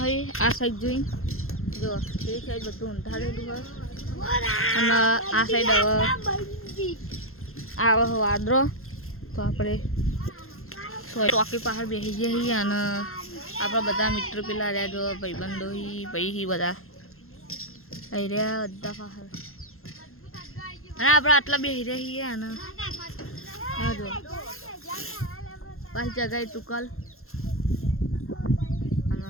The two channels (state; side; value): late; right; 0.62 ms